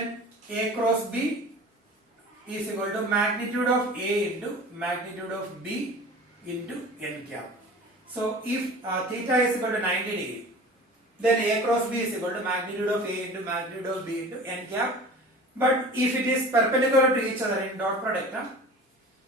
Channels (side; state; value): both; normal; correlation 0.40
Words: A cross B is equal to magnitude of A into magnitude of B into n cap. So if theta is equal to 90 degree, then A cross B is equal to magnitude of A into magnitude of B into n cap. But if it is perpendicular to each other in dot product,